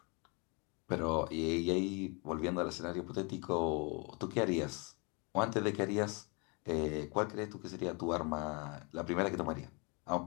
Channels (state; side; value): quieter; right; 31.7 dB